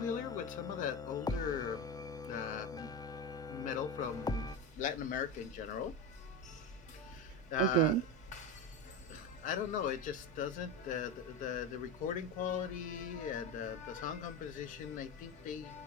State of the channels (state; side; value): normal; both; correlation 0.20